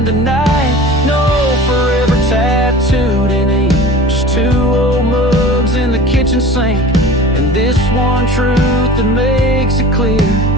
of night. No forever tattooed in ink, just two old mugs in the kitchen sink, and this one truth that makes it clear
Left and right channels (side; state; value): both; normal; correlation 0.40